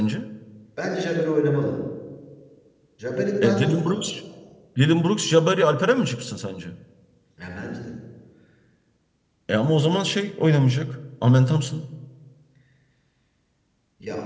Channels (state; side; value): identical; both; correlation 1.00